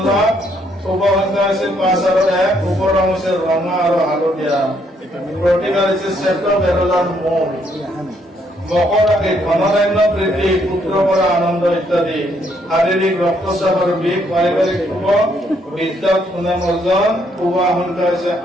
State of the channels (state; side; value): normal; both; correlation 0.71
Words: লাভ। শুভ সংখ্যা হৈছে 5 আৰু 1, শুভ ৰং হৈছে ৰঙা আৰু হালধীয়া, প্ৰতিকাৰ হৈছে শ্বেত বেৰলাৰ মূল। মকৰ ৰাশি ধনধান্য বৃদ্ধি, পুত্ৰৰ পৰা আনন্দ ইত্যাদি, শাৰীৰিক ৰক্তচাপ আৰু বিষ, পাৰিবাৰিক শুভ, বিদ্যাত সুনাম অৰ্জন। শুভ সংখ্যা হৈছে